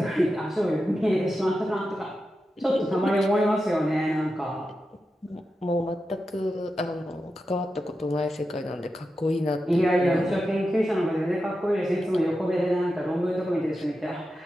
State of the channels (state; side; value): normal; both; correlation 0.90